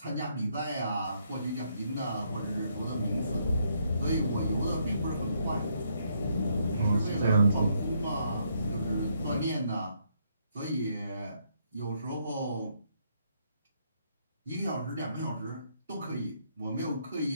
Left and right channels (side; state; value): both; inverted; correlation -0.73